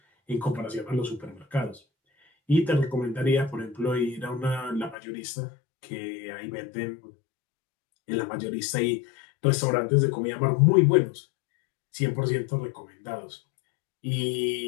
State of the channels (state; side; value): drops out; right; at 5.0 s